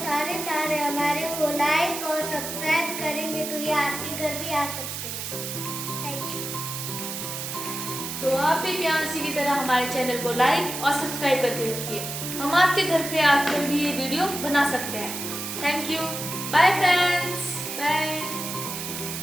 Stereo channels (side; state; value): right; noise; hiss, 6 dB below the sound